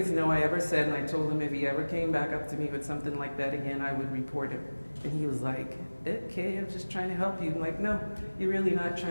no I ever said, and I told him if he ever came back up to me with something like that again, I would report him. And he was like, okay, I'm just trying to help you. I'm like, no, you're really not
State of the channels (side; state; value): both; inverted; correlation -1.00